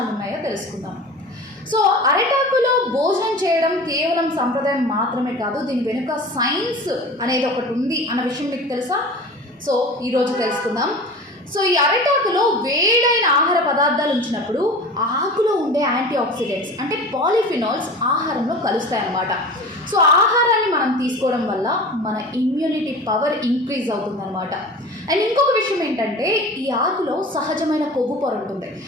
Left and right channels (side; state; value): both; normal; correlation 0.36